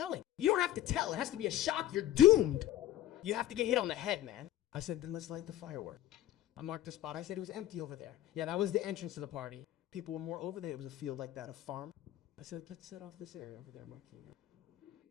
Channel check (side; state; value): right; quieter; 13.4 dB